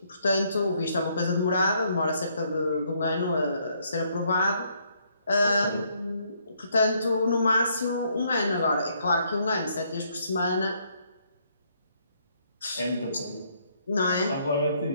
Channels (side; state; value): both; inverted; correlation -0.70